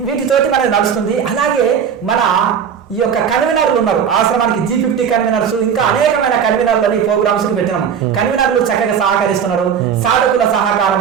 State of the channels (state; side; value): quieter; left; 7.7 dB